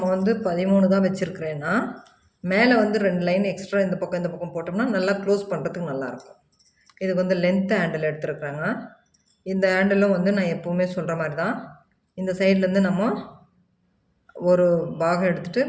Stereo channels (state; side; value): identical; both; correlation 1.00